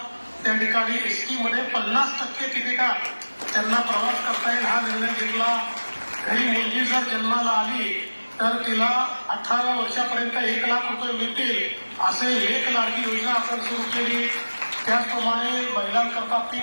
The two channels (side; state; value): both; inverted; correlation -1.00